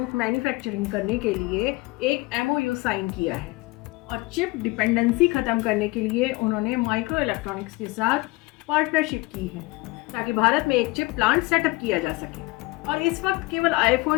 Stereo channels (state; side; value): quieter; right; 22.9 dB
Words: मैन्युफैक्चरिंग करने के लिए एक MOU साइन किया है। और चिप डिपेंडेंसी खत्म करने के लिए उन्होंने माइक्रो इलेक्ट्रॉनिक्स के साथ पार्टनरशिप की है ताकि भारत में एक चिप प्लांट सेटअप किया जा सके। और इस वक्त केवल